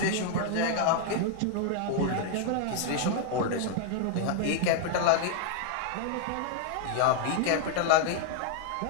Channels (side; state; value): both; different; correlation 0.00